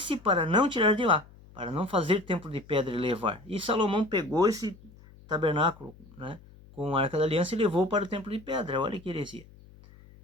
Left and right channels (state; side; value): noise; left; hum, 23 dB below the sound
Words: para não tirar de lá, para não fazer templo de pedra e levar. E Salomão pegou esse tabernáculo, né, com a Arca da Aliança e levou para o templo de pedra. Olha que heresia.